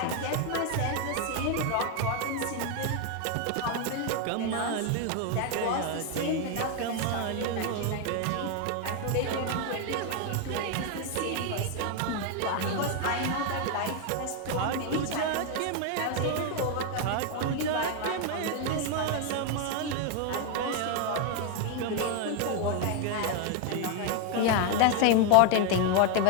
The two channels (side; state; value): both; different; correlation 0.01